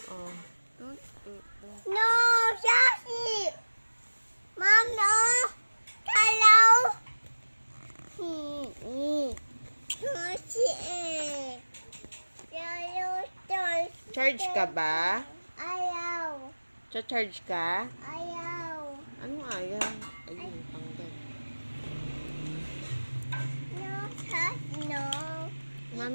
Oh. No, Sassy. Mom, no. Hello. Sassy. Charge ka ba? Ayaw. Cha-charge ka? Ayaw. Anong ayaw? Ayun, tanggal. No, Sassy, no.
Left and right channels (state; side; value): inverted; both; correlation -1.00